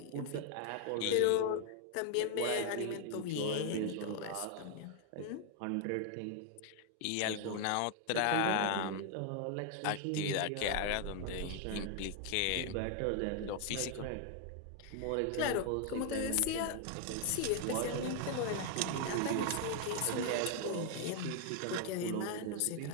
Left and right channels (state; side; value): different; both; correlation 0.00